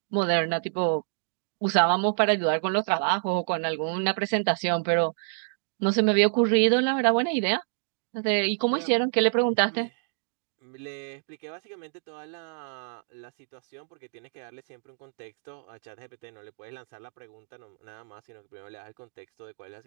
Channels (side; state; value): left; silent; digital silence